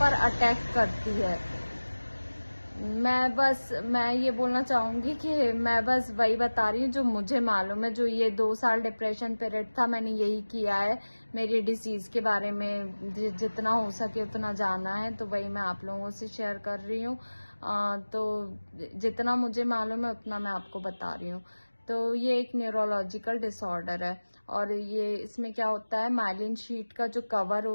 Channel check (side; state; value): both; inverted; correlation -1.00